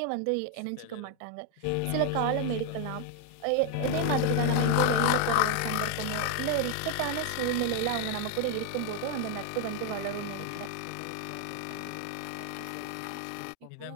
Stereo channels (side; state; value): both; different; correlation 0.01